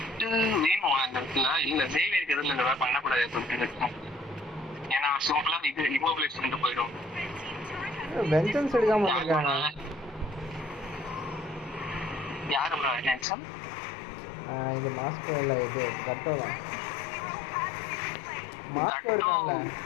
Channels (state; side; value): drops out; right; at 13.2 s